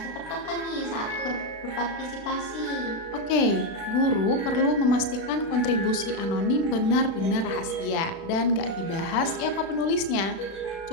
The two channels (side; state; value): right; late; 36 ms